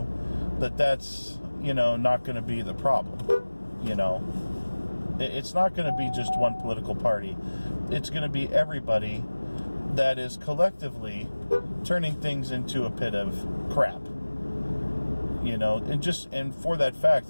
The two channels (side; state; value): both; inverted; correlation -1.00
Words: that's, not going to be the problem. It's not going to be just one political party. It's going to be everybody that is collectively turning things into a pit of crap. And for that fact,